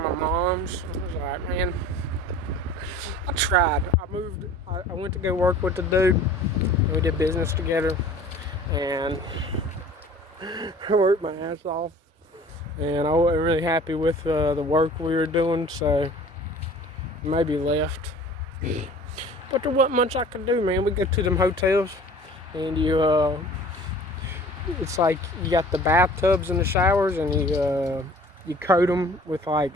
my mom's. I was like, man, I tried. I went to go work with the dude. We did business together, and I worked my ass off. And I wasn't really happy with the work we were doing, so maybe left. But there wasn't much I could do, man. We go to them hotels, and it's like you got the bathtubs and the showers, and you coat them with like,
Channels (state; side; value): normal; both; correlation 0.47